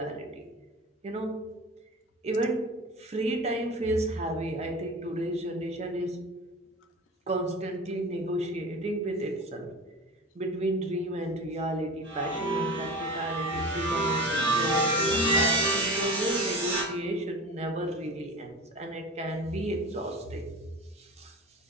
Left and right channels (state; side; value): normal; both; correlation 0.33